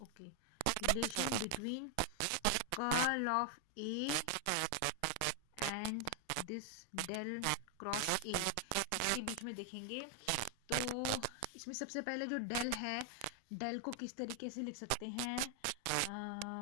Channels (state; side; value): different; both; correlation 0.00